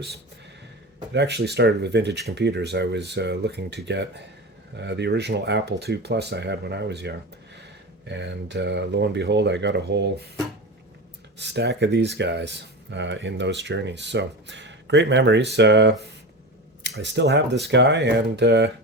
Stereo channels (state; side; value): normal; both; correlation 0.25